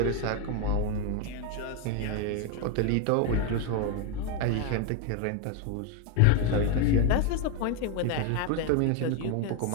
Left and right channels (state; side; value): different; both; correlation 0.01